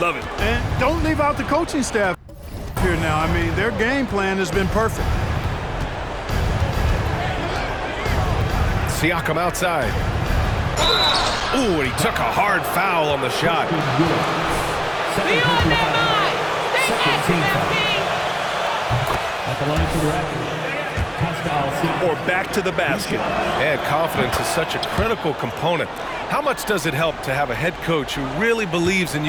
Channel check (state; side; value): identical; both; correlation 1.00